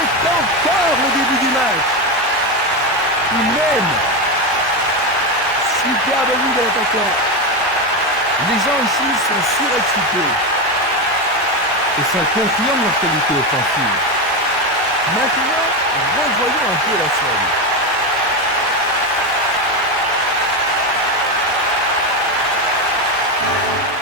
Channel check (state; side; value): normal; both; correlation 0.13